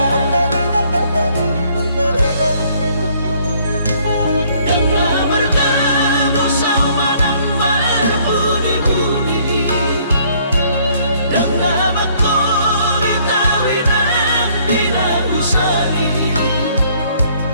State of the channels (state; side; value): inverted; both; correlation -0.63